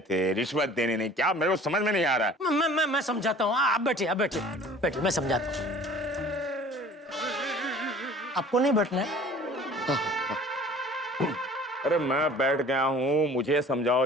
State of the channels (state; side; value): normal; both; correlation 0.48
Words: रिश्वत देने नहीं? क्या मेरे को समझ में नहीं आ रहा है। मैं समझाता हूँ, आप बैठिए, आप बैठिए बैठिए, मैं समझाता हूँ। आपको नहीं बैठना है? अरे मैं बैठ गया हूँ, मुझे